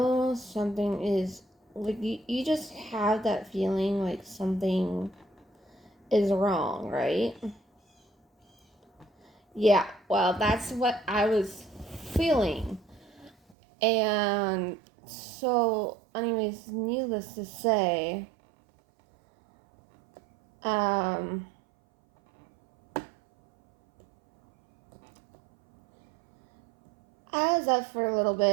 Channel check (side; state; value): left; drops out; at 13.6 s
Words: something is, you just have that feeling like something is wrong, right? Yeah, well, that's what I was feeling. And so, anyways, needless to say, I was up for a little